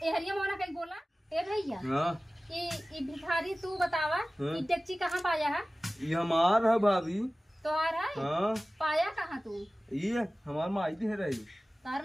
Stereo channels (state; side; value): normal; both; correlation 0.97